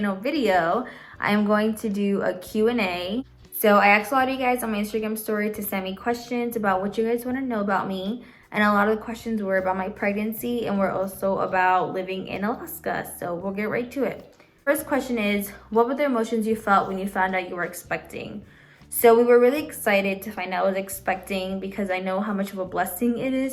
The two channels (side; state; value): both; identical; correlation 1.00